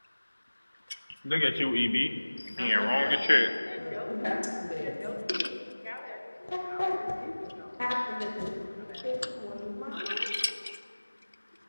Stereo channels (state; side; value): inverted; both; correlation -1.00